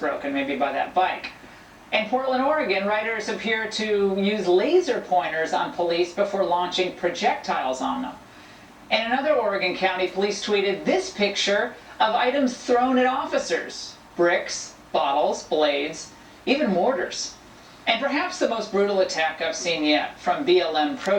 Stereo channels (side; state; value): both; identical; correlation 1.00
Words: maybe by that bike. In Portland, Oregon, writers appear to use laser pointers on police before launching projectiles on them. In another Oregon county, police tweeted this picture of items thrown at officers: bricks, bottles, blades, even mortars. And perhaps the most brutal attack I've seen yet, from BLM